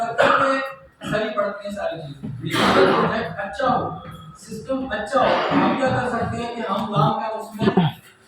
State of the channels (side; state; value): both; identical; correlation 1.00